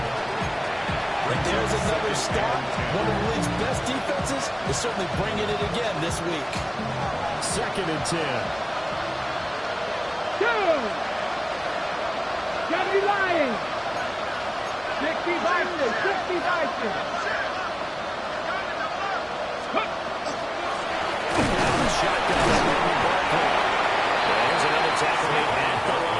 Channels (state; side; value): identical; both; correlation 1.00